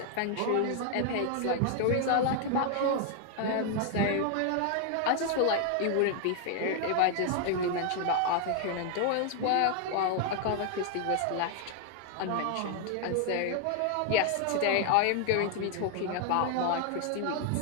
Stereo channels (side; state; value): both; different; correlation 0.00